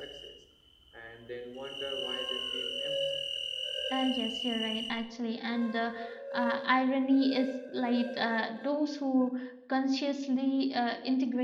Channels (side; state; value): both; identical; correlation 1.00